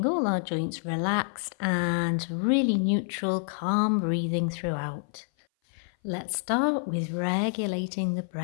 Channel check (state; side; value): silent; right; 57 dB below the other